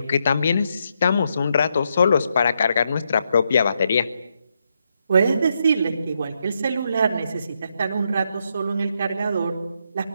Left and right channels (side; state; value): both; inverted; correlation -0.80